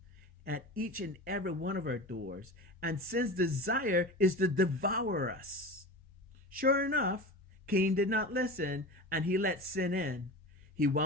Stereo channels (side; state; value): both; normal; correlation 0.30